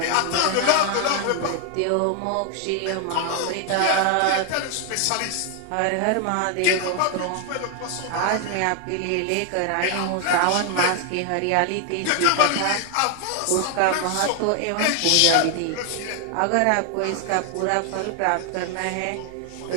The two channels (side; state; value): both; different; correlation 0.00